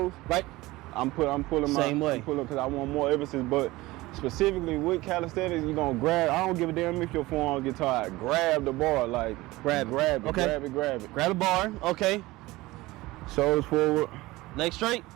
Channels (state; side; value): quieter; left; 19.6 dB